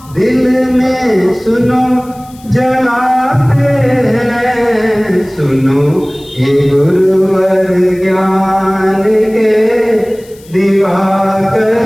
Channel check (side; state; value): left; noise; hiss, 26 dB below the sound